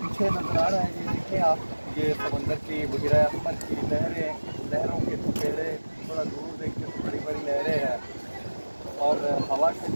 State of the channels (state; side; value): inverted; both; correlation -1.00